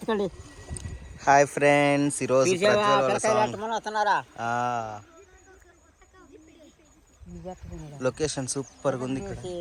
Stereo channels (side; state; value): both; identical; correlation 1.00